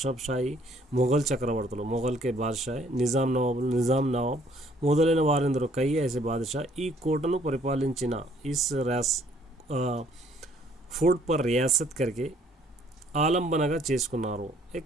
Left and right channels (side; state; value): both; normal; correlation 0.62